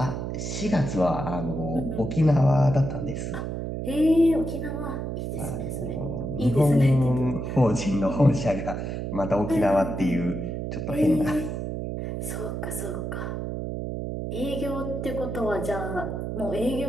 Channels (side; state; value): right; noise; hum, 4 dB below the sound